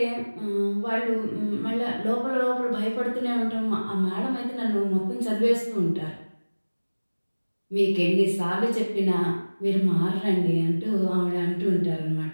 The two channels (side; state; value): both; inverted; correlation -1.00